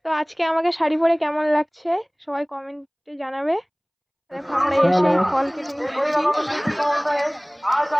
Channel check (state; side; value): identical; both; correlation 1.00